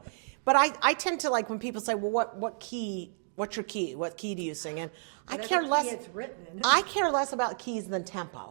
But I tend to like when people say, well, what's your key? What key do you sing in? I care less. It's written in. I care less about keys than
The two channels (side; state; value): left; silent; digital silence